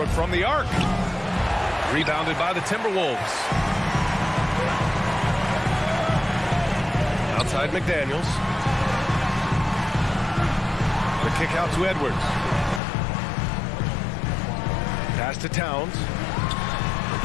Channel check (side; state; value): right; drops out; at 12.8 s